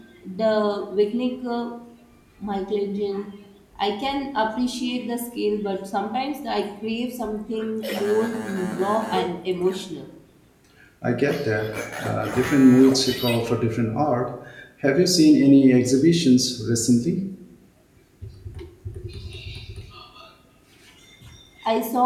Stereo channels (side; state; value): both; identical; correlation 1.00